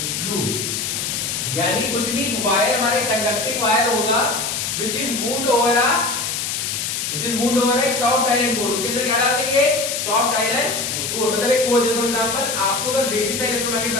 लूप। यानी कुछ नहीं, वायर हमारे कंडक्टिंग वायर होगा which is wound over एक सॉफ्ट आयरन कोर। उसके अंदर क्या डाल देंगे? Soft iron core. मतलब एक कोर, जैसे फॉर एग्जांपल आपको अगर बेसिक सा इलेक्ट्रोमैग्नेट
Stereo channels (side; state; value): left; noise; hiss, 2 dB below the sound